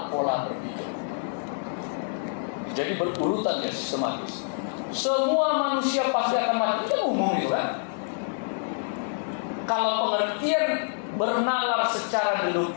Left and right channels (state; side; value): silent; right; digital silence